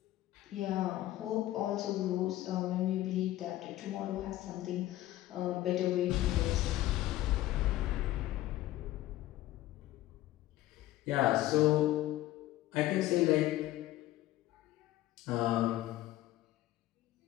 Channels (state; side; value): quieter; right; 15.2 dB